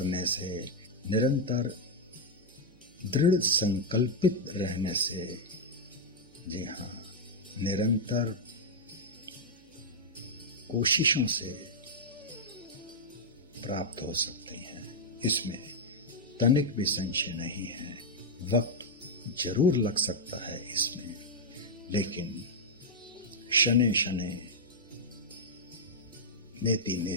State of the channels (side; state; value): right; noise; hum, 29 dB below the sound